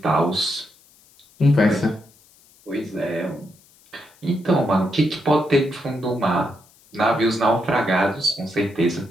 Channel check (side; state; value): left; noise; hiss, 29 dB below the sound